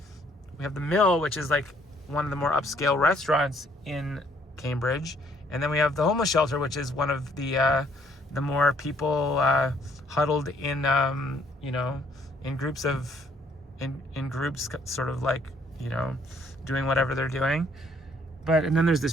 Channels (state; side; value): normal; both; correlation 0.65